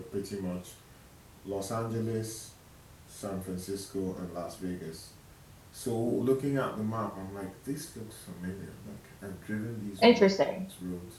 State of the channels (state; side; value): identical; both; correlation 1.00